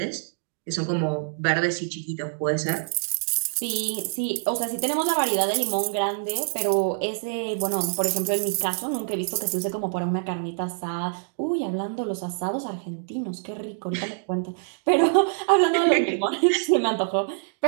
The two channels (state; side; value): silent; left; digital silence